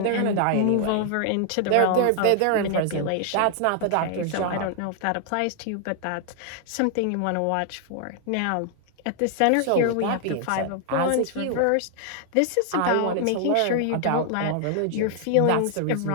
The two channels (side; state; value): both; different; correlation 0.00